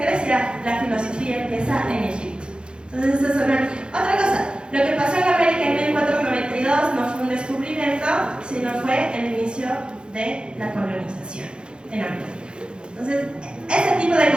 Grecia, la filosofía empieza en Egipto. Entonces, eso es otra cosa. Lo que pasó en América en 1492 no fue un descubrimiento, sino fue el inicio de la colonización en América. Entonces, ese tipo de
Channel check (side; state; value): left; late; 0.052 ms